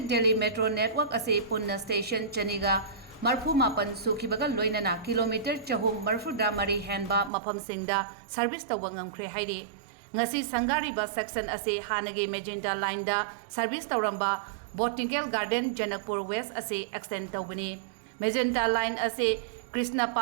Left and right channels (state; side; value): drops out; left; at 7.3 s